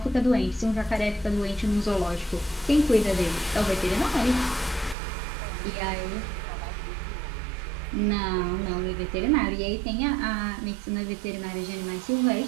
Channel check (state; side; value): drops out; left; at 5.0 s